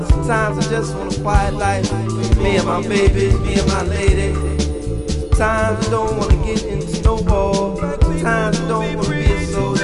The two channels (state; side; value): identical; both; correlation 1.00